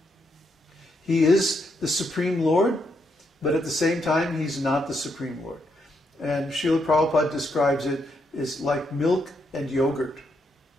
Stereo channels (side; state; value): both; normal; correlation 0.78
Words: He is the Supreme Lord, but at the same time he's not the Supreme Lord. And Srila Prabhupada describes it as like milk and yogurt.